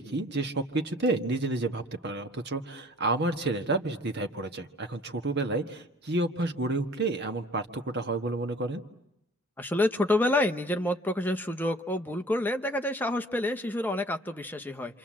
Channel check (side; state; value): both; normal; correlation 0.51